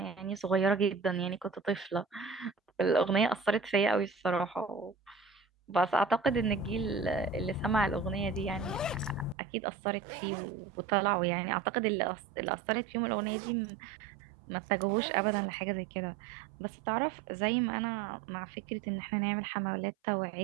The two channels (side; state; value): left; drops out; at 9.3 s